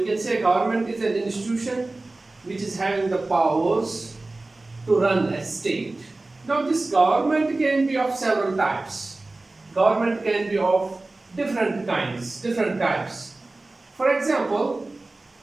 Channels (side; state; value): left; quieter; 3.1 dB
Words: can say government is an institution which is having the powers to run a state. Now this government can be of several types. Government can be of different kinds, different types. For example,